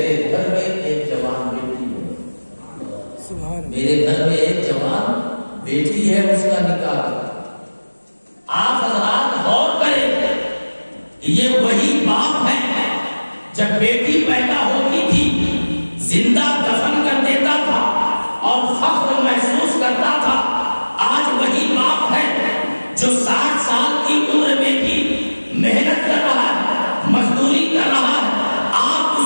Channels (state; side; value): inverted; both; correlation -1.00